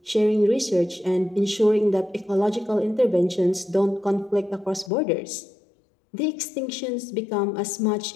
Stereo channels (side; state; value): right; drops out; at 4.9 s